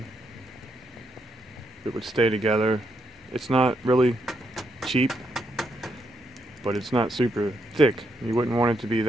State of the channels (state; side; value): normal; both; correlation 0.78